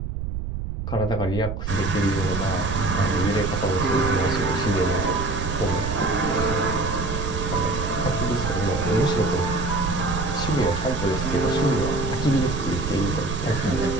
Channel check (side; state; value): right; noise; rumble, 5 dB below the sound